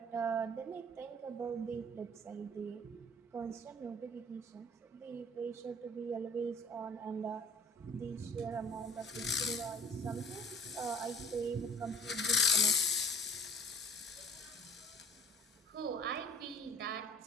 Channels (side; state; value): both; normal; correlation 0.50